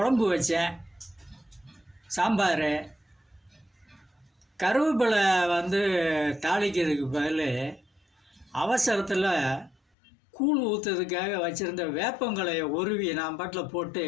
வச்சேன், சாம்பார், கருவேப்பிலை தாளிக்கிறதுக்கு பதில் அவசரத்தில் கூழ் ஊற்றுறதுக்காக வச்சுருந்த வேப்பங்களையை உருவி நான் பாட்டில் போட்டு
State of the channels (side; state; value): right; drops out; at 9.8 s